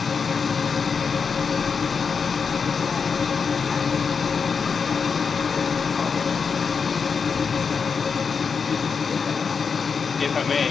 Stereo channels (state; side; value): quieter; right; 5.7 dB